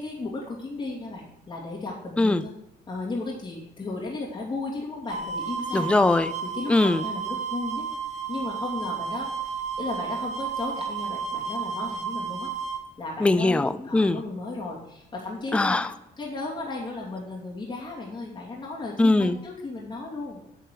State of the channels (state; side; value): normal; both; correlation 0.77